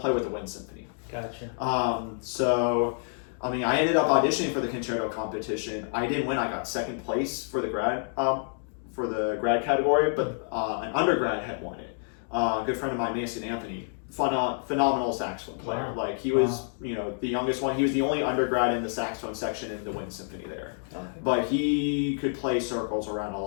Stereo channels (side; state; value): right; silent; digital silence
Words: with the wind symphony. Gotcha. I mean, I ended up auditioning for the concerto competition. I didn't win. I got second place for the grad category, but an undergrad had won it. A good friend of mine, Mason Anthony, phenomenal saxophone player. Wow. Like he was, the youngest one. He was the only undergrad in the saxophone section in the Wind Symphony there. Okay. But he could play circles around a